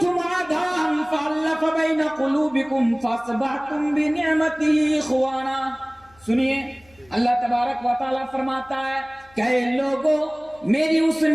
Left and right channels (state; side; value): noise; left; hum, 30 dB below the sound